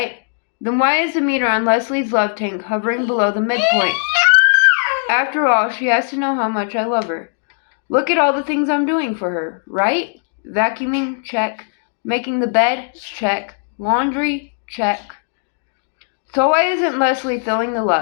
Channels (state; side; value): silent; right; digital silence